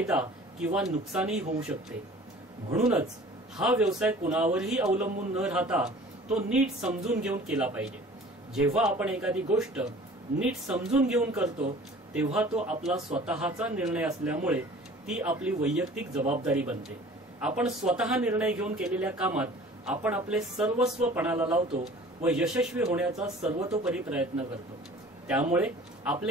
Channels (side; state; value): both; normal; correlation 0.46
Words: किंवा नुकसानही होऊ शकते। म्हणूनच हा व्यवसाय कुणावरही अवलंबून न राहता तो नीट समजून घेऊन केला पाहिजे। जेव्हा आपण एखादी गोष्ट नीट समजून घेऊन करतो तेव्हा तो आपला स्वतःचा निर्णय असल्यामुळे ती आपली वैयक्तिक जबाबदारी बनते। आपण स्वतः निर्णय घेऊन केलेल्या कामात आपण आपले सर्वस्व पणाला लावतो व यशस्वी होण्याचा सर्वतोपरी प्रयत्न करतो। त्यामुळे